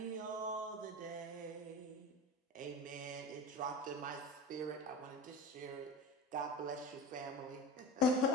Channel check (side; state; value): both; normal; correlation 0.32